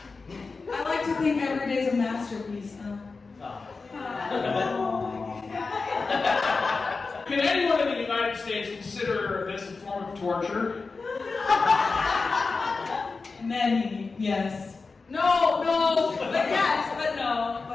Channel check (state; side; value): quieter; right; 4.2 dB